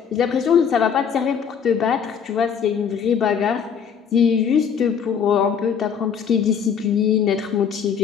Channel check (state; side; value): quieter; right; 7.3 dB